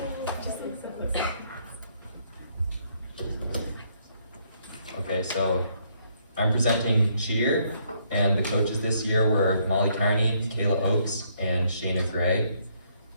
Okay, so I'm presenting cheer, and the coaches this year were Molly Carney, Kayla Oakes, and Shayna Gray.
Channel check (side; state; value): both; inverted; correlation -0.69